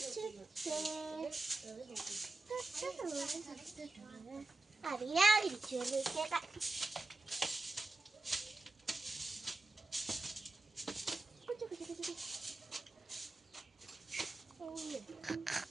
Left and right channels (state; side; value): quieter; left; 3.3 dB